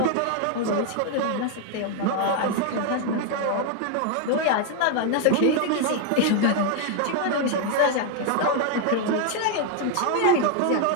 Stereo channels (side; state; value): both; different; correlation 0.01